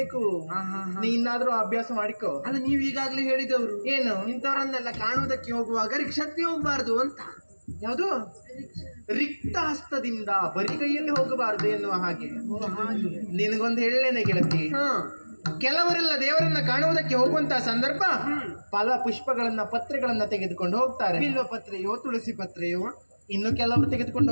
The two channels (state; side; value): inverted; both; correlation -1.00